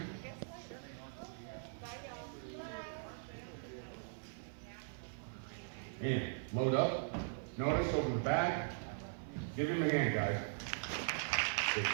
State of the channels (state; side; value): silent; left; 51 dB below the other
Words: And load up. Notice over the back. Give him a hand, guys. Good job.